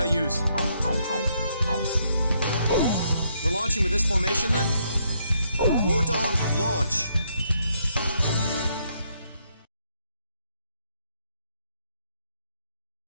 use? We're launching with this formation, then? War Dog, launch!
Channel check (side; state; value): both; inverted; correlation -0.73